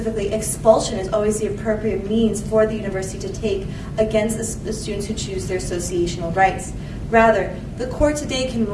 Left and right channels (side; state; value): both; identical; correlation 1.00